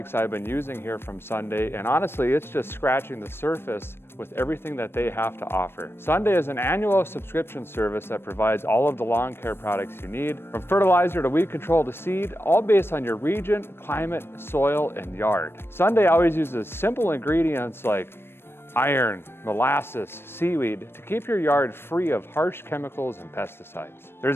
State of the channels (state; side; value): late; right; 0.11 ms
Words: I've been using here from Sunday, and honestly, it's just scratching the surface with everything that they have to offer. Sunday is an annual subscription service that provides all of the lawn care products you need, from fertilizer to weed control to seed, all based on your region, climate, soil, and yard. Sunday always uses simple ingredients like iron, molasses, seaweed to keep your yard free of harsh chemicals and pesticides.